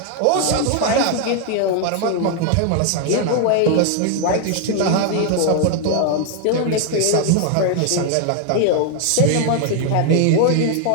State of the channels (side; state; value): both; different; correlation 0.00